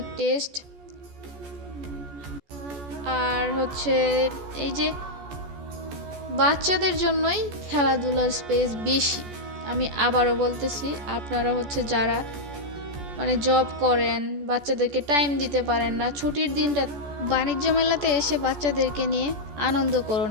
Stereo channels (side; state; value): left; late; 14 ms